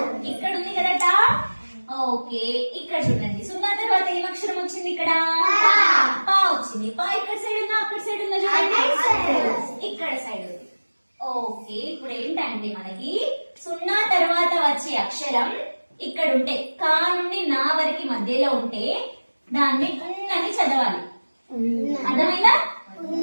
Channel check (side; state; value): both; inverted; correlation -1.00